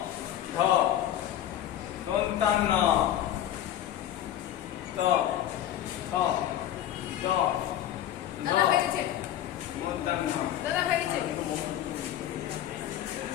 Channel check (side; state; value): right; quieter; 11.8 dB